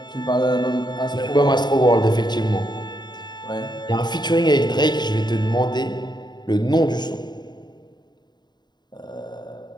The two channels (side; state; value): right; late; 0.21 ms